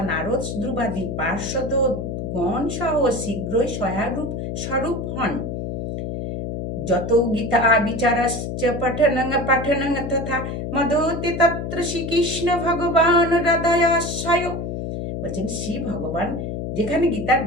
নারদ, ধ্রুবাদি পার্শ্বদ গণ সহ শীঘ্রই সহায়রূপ স্বরূপ হন। যত গীতা বিচারশ্চ পঠনং তথা মদতে তত্র শ্রীকৃষ্ণ ভগবান হৃদয়াশ্রয়। বলছেন শ্রী ভগবান যেখানে গীতার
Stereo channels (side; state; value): left; noise; hum, 5 dB below the sound